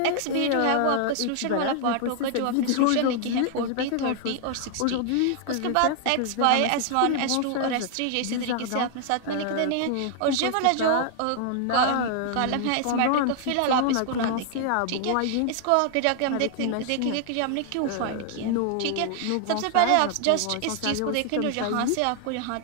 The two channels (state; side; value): different; both; correlation 0.00